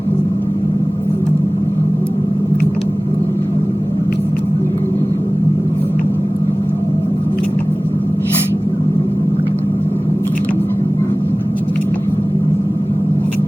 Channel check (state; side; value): normal; both; correlation 0.98